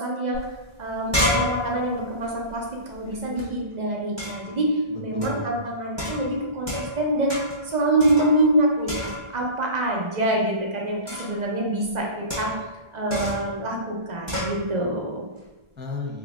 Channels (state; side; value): late; left; 1.4 ms